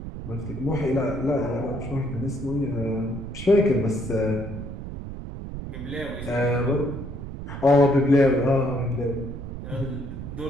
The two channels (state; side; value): noise; right; rumble, 9 dB below the sound